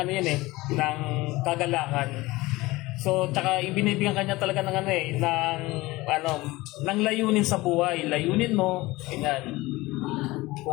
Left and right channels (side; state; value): right; quieter; 20.3 dB